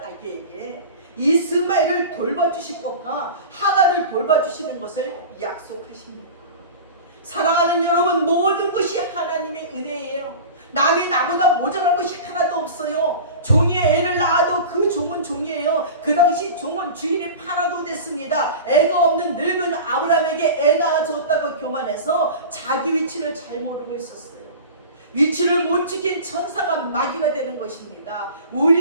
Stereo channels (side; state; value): both; inverted; correlation -0.34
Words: 아기에게 이스마엘을 돌봐주실 것과 하갈을 돌봐주시는 것을 약속하십니다. 사랑하는 여러분, 모든 것이 하나님의 은혜예요. 남이 나보다 모자란 것이 하나도 없어요. 종이 애를 낳아도 그 종은 종이에요. 그 당시 종은 주인이 팔아도 됐습니다. 애가 없는 늙은 아브라함에게 애 낳아줬다고 교만해서 자기 위치를 잘 모르고 있었어요. 위치를 못 지킨 천사가 마귀가 되는 것입니다.